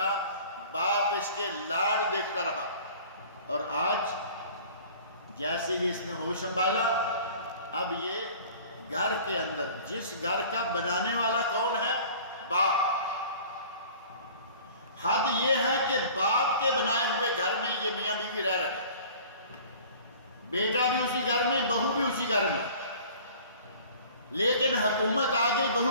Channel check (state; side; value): inverted; both; correlation -0.46